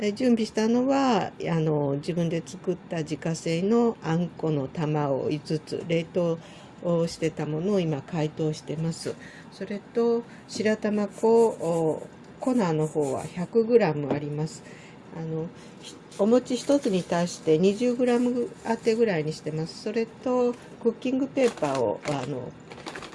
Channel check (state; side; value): identical; both; correlation 1.00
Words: 準備したのは自分で作った自家製のあんこの玉を5つ冷凍をしてたものを今解凍してます。それと白玉粉粉の方は 100g あります。お餅1つに対して 20g 当てぐらいにしてます。それとクッキングペーパーを